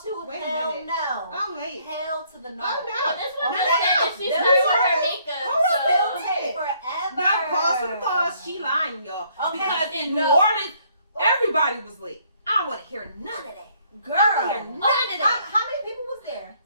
two, Wait a hell minute. no. Oh, wait. Hell to the no. Oh, no. well, this one No, just no, said no. that she This started with her one- makeup. Hold on, So. It'll take forever. Now, pause for the cause. She lying, y'all. Okay. Because in No. New Orleans, everybody was late. I don't want to hear none of that. Girl, hear none of that. How many people was there?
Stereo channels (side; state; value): both; inverted; correlation -0.65